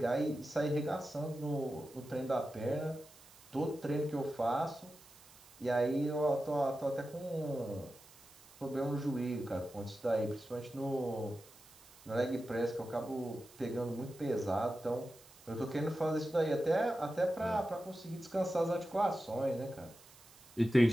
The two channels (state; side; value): noise; right; hiss, 23 dB below the sound